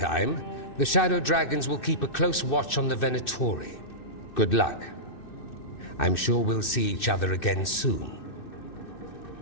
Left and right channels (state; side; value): late; right; 2.6 ms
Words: the Shadow Dragons will keep a close watch on the Venatori. Good luck. I'm sure we'll see each other again soon.